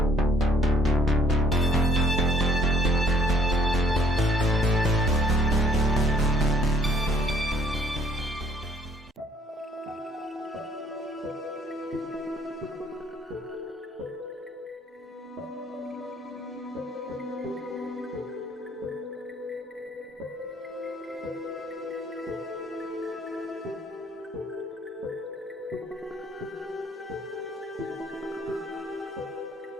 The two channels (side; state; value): both; normal; correlation 0.61